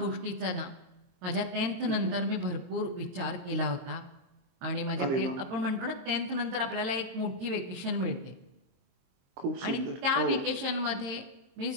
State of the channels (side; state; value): left; late; 23 ms